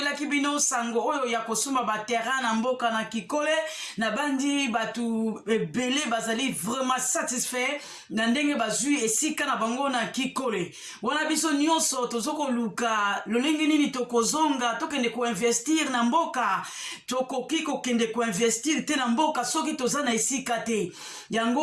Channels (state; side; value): identical; both; correlation 1.00